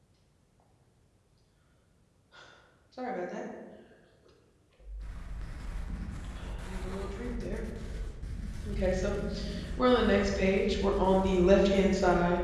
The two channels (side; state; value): both; identical; correlation 1.00